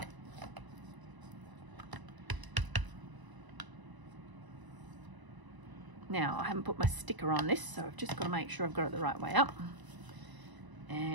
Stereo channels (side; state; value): left; late; 1.0 ms